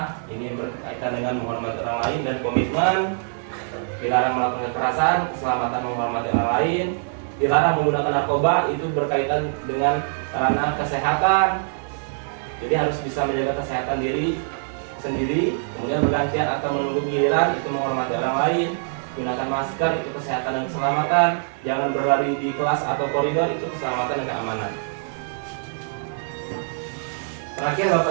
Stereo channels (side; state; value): left; silent; digital silence